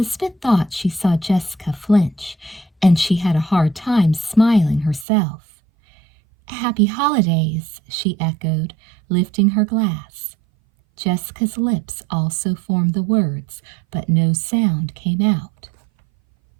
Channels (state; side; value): drops out; left; at 5.1 s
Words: thought she saw Jessica flinch, and she had a hard time smiling herself. "Happy holidays," she echoed, lifting her glass. Jessica's lips also formed the words, but no sound came out.